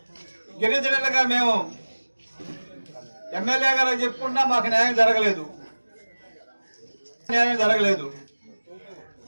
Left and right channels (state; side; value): inverted; both; correlation -1.00